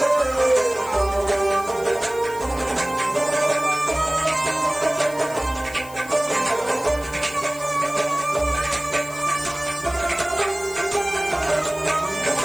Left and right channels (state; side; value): noise; left; hiss, 18 dB below the sound